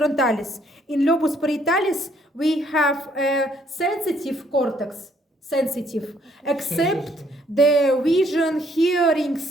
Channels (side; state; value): both; normal; correlation 0.67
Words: In lobus parietalis, we have a sensitive cortex, sensitive, except the vision, hearing,